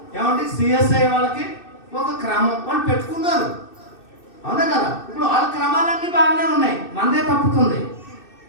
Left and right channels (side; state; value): right; late; 2.6 ms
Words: ఏమంటే సిఎస్ఐ వాళ్ళకి ఒక క్రమం వాళ్ళు పెట్టుకున్నారు. అవునా కదా? ఇప్పుడు వాళ్ళ క్రమాలన్నీ బాగానే ఉన్నాయి, మనదే తప్పుతుంది.